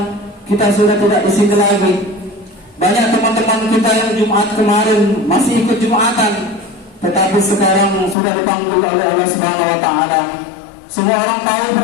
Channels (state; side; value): drops out; right; at 8.2 s